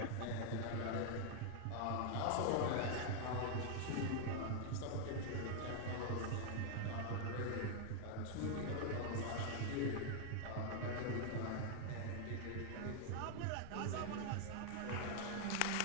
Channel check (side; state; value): both; different; correlation 0.00